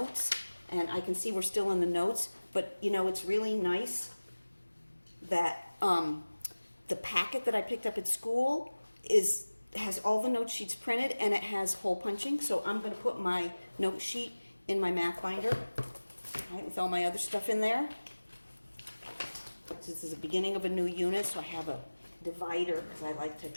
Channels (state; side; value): inverted; both; correlation -1.00